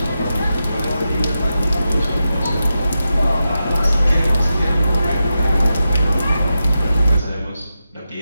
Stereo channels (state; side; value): inverted; both; correlation -0.90